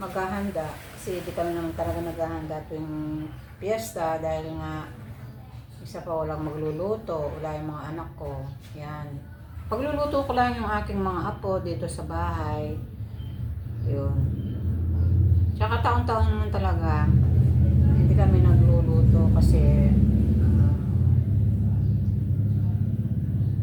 kasi di kami naman talaga naghahanda tuwing piyesta dahil nga isa pa walang magluluto, wala yung mga anak ko. Yan. Pagluluto ko lang yung aking mga apo dito sa bahay. Yun. Tsaka taon-taon naman talaga hindi kami nagluluto kasi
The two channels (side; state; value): both; identical; correlation 1.00